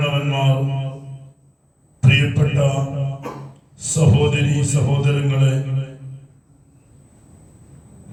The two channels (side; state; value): both; identical; correlation 1.00